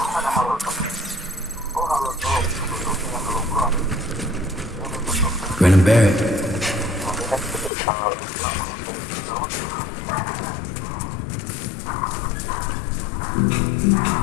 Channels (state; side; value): drops out; right; at 7.7 s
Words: Grin and bear it.